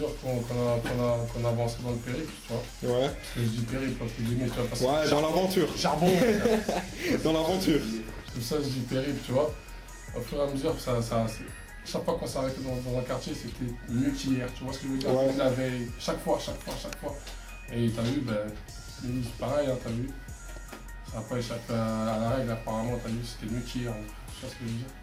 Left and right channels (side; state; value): both; identical; correlation 1.00